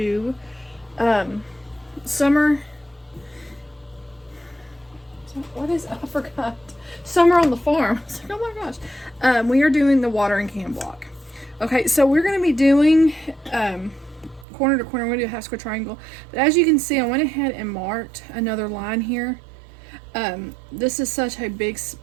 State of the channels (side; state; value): left; drops out; at 14.5 s